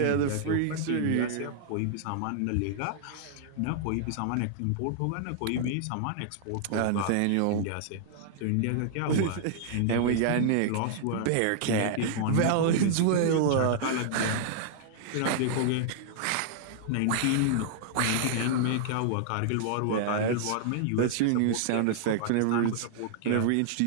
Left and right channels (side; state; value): both; different; correlation -0.01